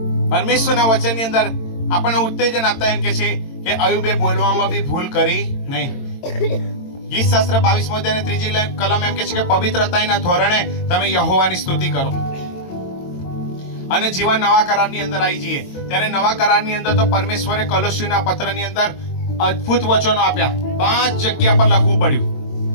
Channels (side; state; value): right; late; 22 ms